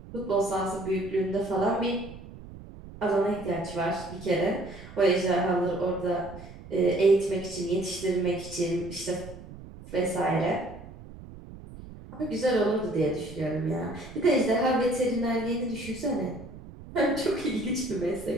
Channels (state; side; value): noise; right; rumble, 15 dB below the sound